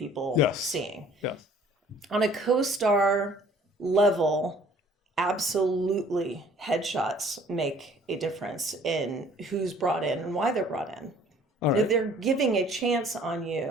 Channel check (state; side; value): normal; both; correlation 0.55